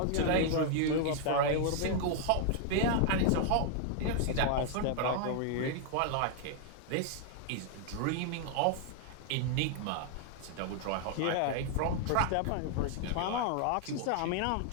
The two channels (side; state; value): both; different; correlation 0.00